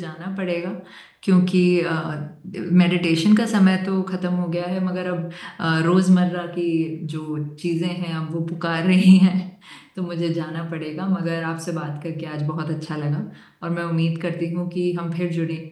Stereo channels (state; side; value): identical; both; correlation 1.00